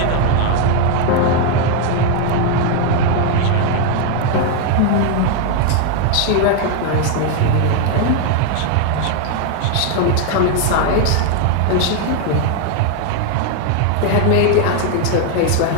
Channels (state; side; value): different; both; correlation 0.01